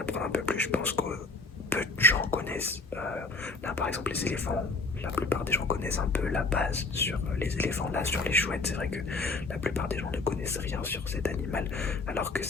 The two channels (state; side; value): quieter; right; 3.5 dB